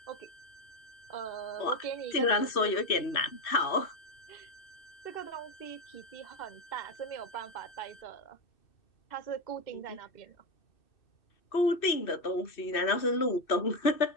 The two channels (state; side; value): late; right; 2.6 ms